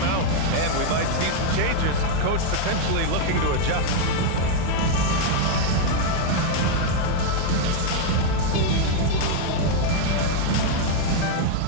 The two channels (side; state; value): both; different; correlation 0.00